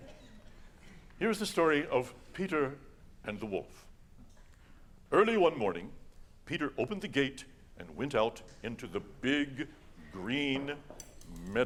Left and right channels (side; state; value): both; identical; correlation 1.00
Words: Here's the story of Peter and the wolf. Early one morning, Peter opened the gate and went out into the big green